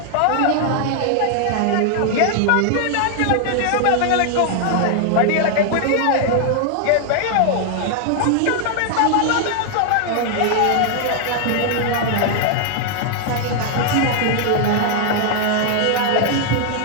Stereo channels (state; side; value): different; both; correlation 0.00